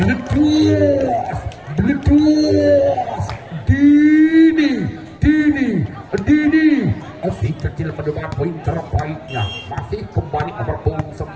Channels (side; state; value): both; identical; correlation 1.00